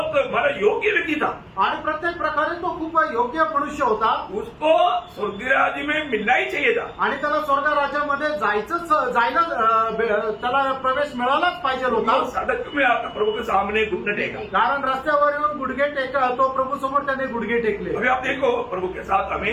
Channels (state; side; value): identical; both; correlation 1.00